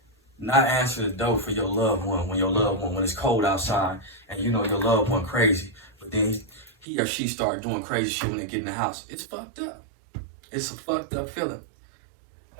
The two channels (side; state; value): left; drops out; at 6.9 s